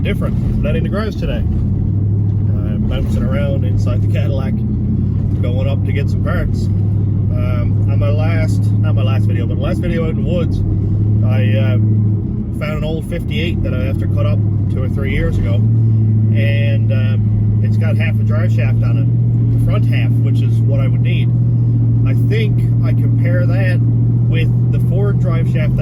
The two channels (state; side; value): identical; both; correlation 1.00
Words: different. I'm not in the garage today. I'm bouncing around inside the Cadillac, going up to get some parts. On my last, not my last video, but the last video out in the woods, I found an old 58 that I after cut up 2 or 3 years ago, and it's got half a drive shaft on it, the front half, which is what I would need. I think I compare that with the Ford drive shaft